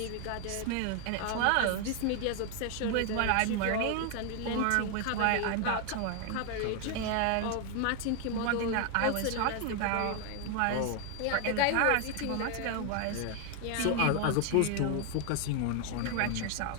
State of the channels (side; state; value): both; different; correlation 0.01